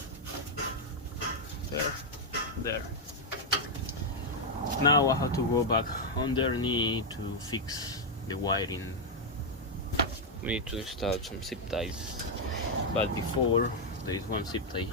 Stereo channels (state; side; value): normal; both; correlation 0.00